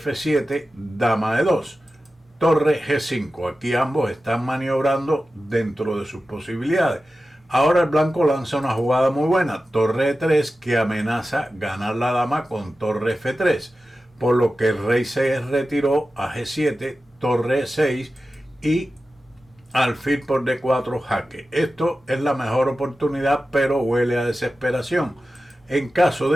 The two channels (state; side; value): normal; both; correlation 0.94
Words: dama E2. Torre G5. Aquí ambos están maniobrando dentro de sus posibilidades. Ahora el blanco lanza una jugada muy buena, torre E3, que amenaza ganar la dama con torre F3, por lo que el rey se retiró a G7, torre E6 y alfil por D4 jaque. Esto es la mejor oportunidad, pero huele a desesperación. En caso